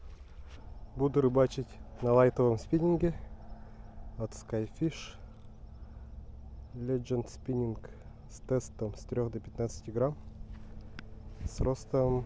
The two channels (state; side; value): identical; both; correlation 1.00